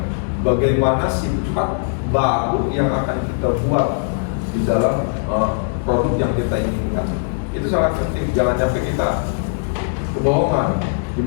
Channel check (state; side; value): silent; right; digital silence